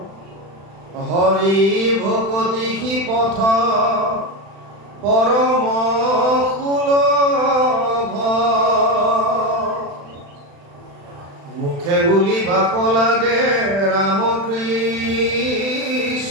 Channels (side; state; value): left; late; 36 ms